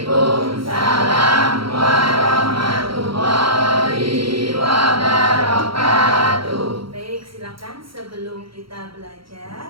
warahmatullahi wabarakatuh. Baik, silakan sebelum kita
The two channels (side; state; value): left; late; 0.74 ms